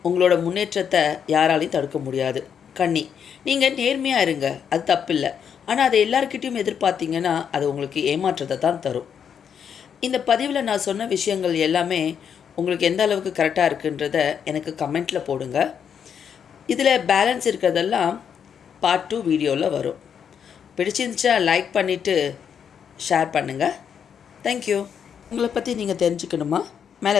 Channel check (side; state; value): right; quieter; 7.7 dB